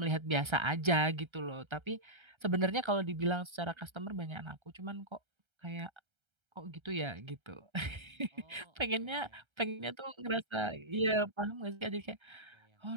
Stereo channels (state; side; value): late; left; 1.3 ms